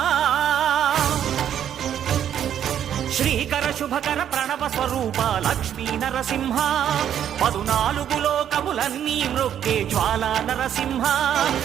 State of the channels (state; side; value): quieter; left; 9.8 dB